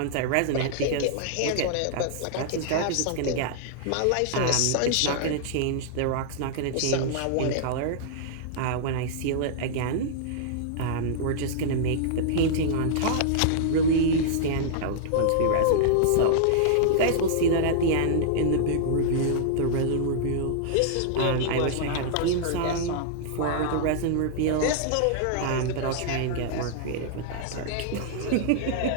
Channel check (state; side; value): different; both; correlation -0.01